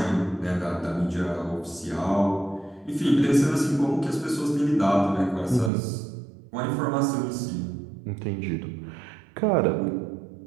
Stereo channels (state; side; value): drops out; left; at 5.7 s